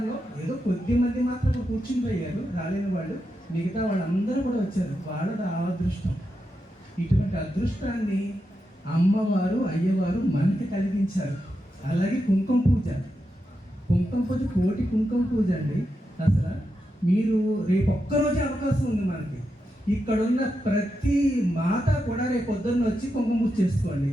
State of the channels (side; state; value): both; normal; correlation 0.87